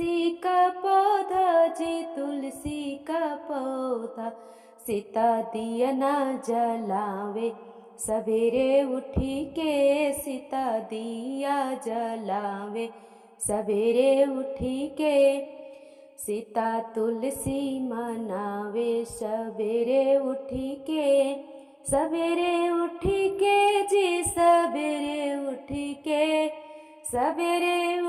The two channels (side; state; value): both; identical; correlation 1.00